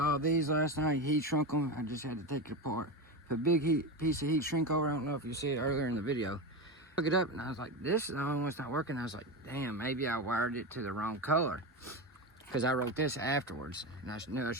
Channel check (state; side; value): normal; both; correlation 0.19